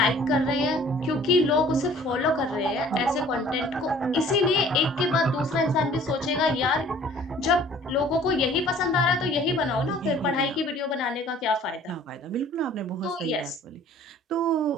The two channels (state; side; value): normal; both; correlation 0.52